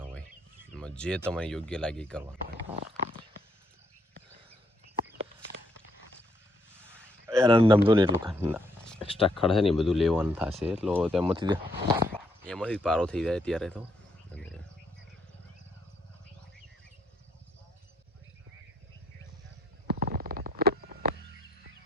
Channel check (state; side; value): normal; both; correlation 0.72